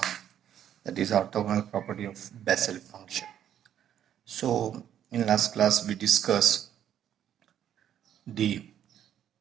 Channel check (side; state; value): left; quieter; 10.2 dB